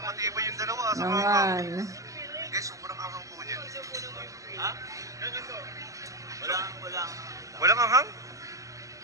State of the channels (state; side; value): late; left; 0.16 ms